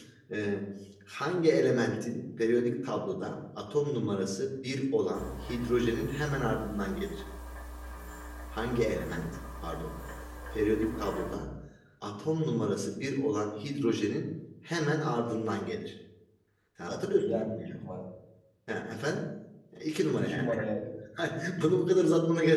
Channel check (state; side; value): identical; both; correlation 1.00